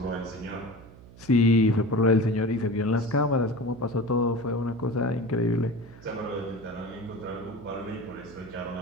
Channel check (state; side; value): noise; right; hum, 20 dB below the sound